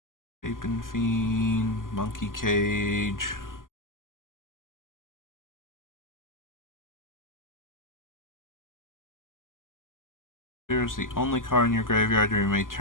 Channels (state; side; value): late; right; 0.89 ms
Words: Apin Fiend, Monkey Cage. Here's the only card in your graveyard, you may